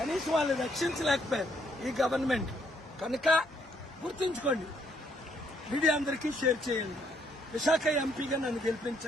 వాళ్ళు రక్షించలేకపోయారు ఈ గవర్నమెంట్. కనుక గుర్తుంచుకోండి, మీడియా అందరికీ షేర్ చేయండి. విశాఖ ఎంపీగా నన్ను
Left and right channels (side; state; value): both; normal; correlation 0.70